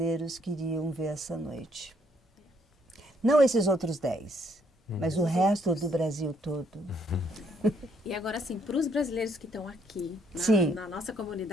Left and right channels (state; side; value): normal; both; correlation 0.69